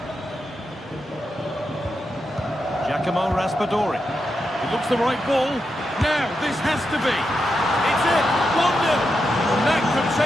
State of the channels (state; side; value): normal; both; correlation 0.86